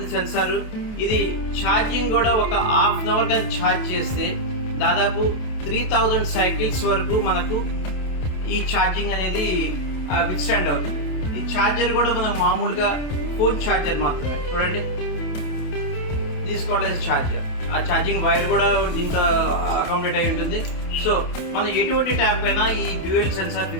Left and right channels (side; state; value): right; late; 28 ms